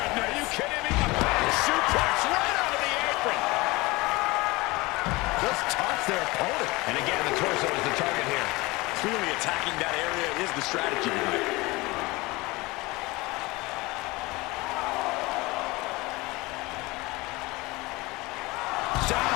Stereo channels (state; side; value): quieter; right; 22.5 dB